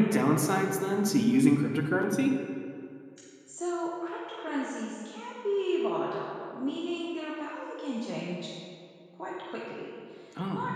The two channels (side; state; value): both; identical; correlation 1.00